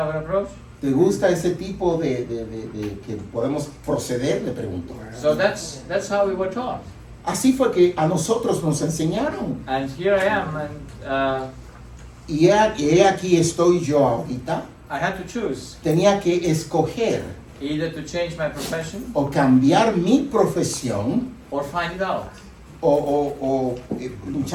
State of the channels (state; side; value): identical; both; correlation 1.00